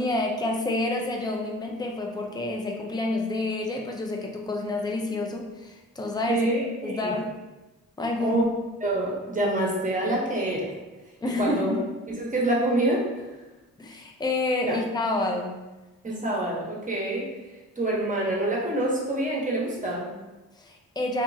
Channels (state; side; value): normal; both; correlation 0.40